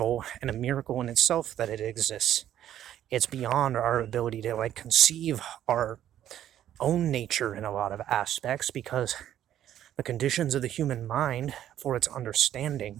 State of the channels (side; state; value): left; quieter; 11.4 dB